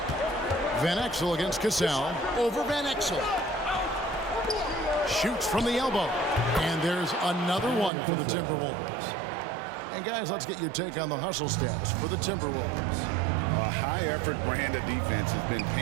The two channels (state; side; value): drops out; left; at 7.9 s